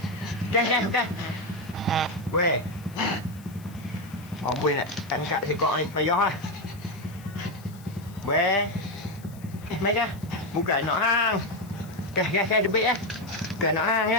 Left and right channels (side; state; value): left; noise; hiss, 24 dB below the sound